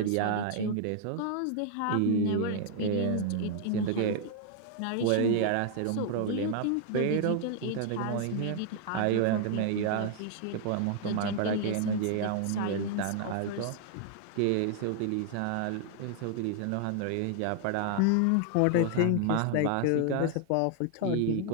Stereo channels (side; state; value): both; different; correlation 0.00